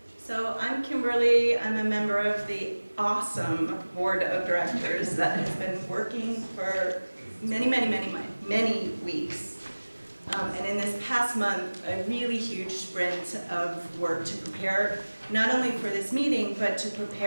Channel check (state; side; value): inverted; both; correlation -1.00